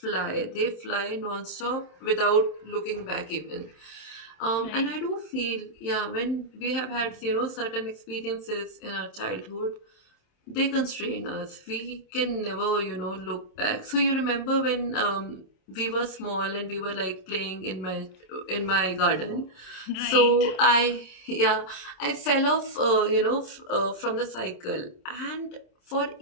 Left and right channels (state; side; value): late; right; 27 ms